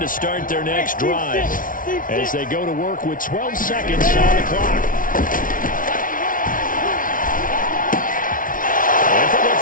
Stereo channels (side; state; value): right; late; 0.39 ms